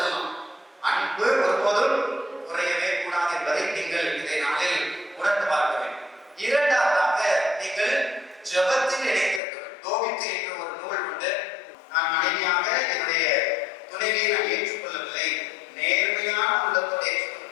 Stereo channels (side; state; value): right; drops out; at 9.4 s